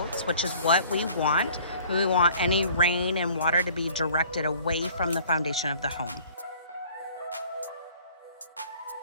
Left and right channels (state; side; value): inverted; both; correlation -0.52